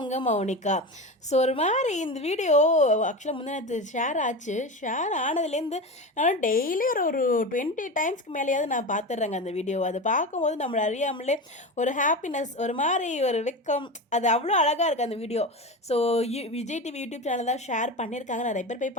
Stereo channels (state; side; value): normal; both; correlation 0.24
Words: மௌனிகா. ஸோ ஒரு மாதிரி இந்த வீடியோ ஆக்சுவலாக முந்தினத்து ஷேர் ஆச்சு. ஷேர் ஆனதுலேருந்து நான் டெய்லி ஒரு ஒரு 20 டைம்ஸ்க்கு மேலேயாவது நான் பார்த்துட்றேங்க அந்த வீடியோ. அதை பார்க்கும்போது நம்மளை அறியாமலே ஒரு ஹாப்பினஸ், ஒரு மாதிரி ஒரு வெக்கம், அது அவ்வளோ அழகாக இருக்குது அந்த video. So Vijay TV YouTube channel தான் ஷேர் பண்ணியிருக்காங்க. நிறைய பேர் போய்